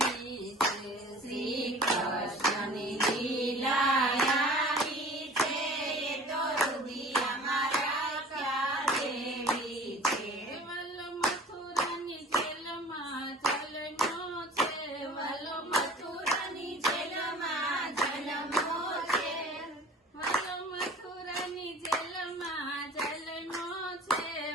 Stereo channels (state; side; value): normal; both; correlation 0.45